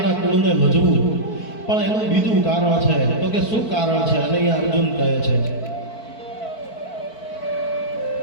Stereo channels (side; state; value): right; late; 4.5 ms